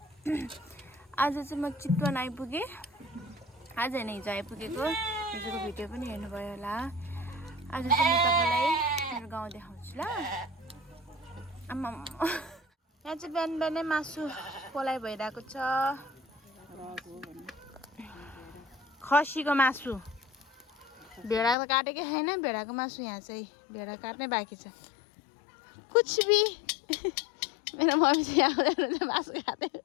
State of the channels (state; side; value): drops out; right; at 21.6 s